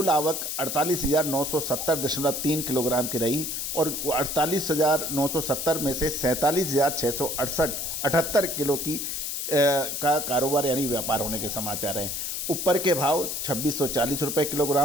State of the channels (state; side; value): noise; left; hiss, 3 dB below the sound